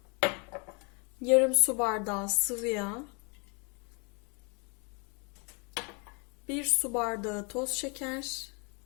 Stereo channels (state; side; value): quieter; right; 34.4 dB